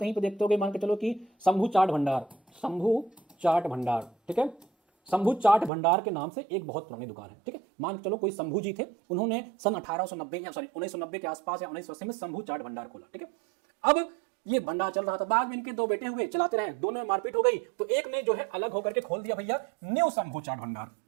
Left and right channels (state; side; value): drops out; left; at 5.7 s